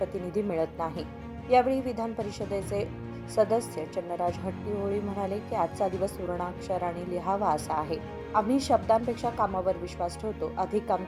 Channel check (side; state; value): both; identical; correlation 1.00